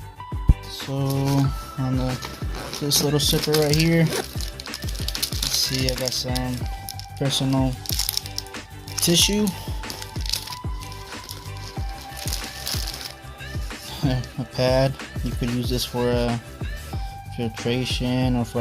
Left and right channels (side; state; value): both; identical; correlation 1.00